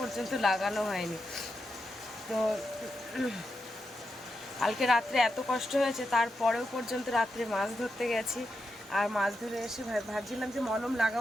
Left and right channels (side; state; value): both; normal; correlation 0.87